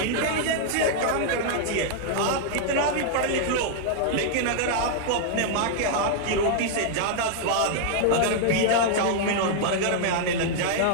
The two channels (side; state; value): both; different; correlation -0.01